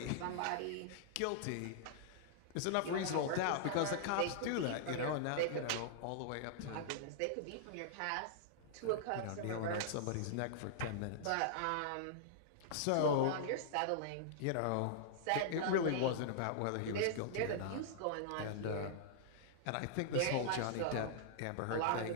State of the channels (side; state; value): both; different; correlation -0.01